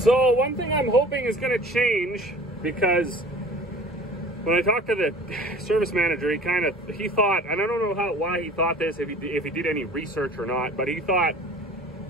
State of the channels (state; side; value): normal; both; correlation 0.45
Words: So one thing I'm hoping is going to change, because when I talked to the service manager, he thought, and I don't know why he thought this, if he did any research or not, but he thought,